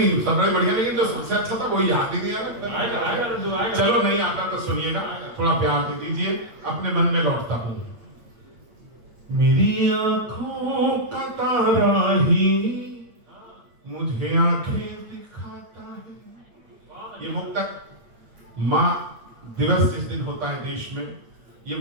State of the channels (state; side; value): late; left; 8.7 ms